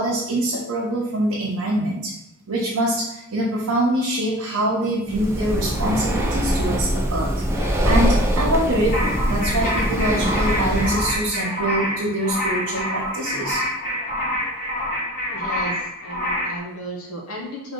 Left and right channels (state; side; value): normal; both; correlation 0.43